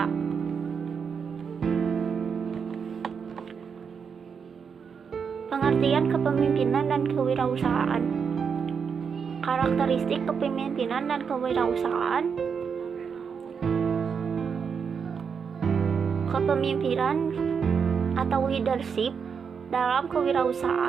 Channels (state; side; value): quieter; left; 6.4 dB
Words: Pengertian kepemimpinan dan kewirausahaan. Karakteristik kepemimpinan dan kewirausahaan. Kepemimpinan atau leadership dalam